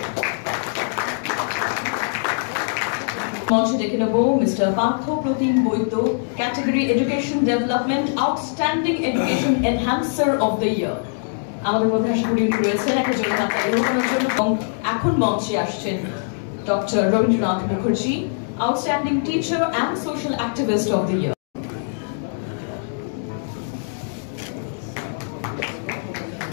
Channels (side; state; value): right; silent; digital silence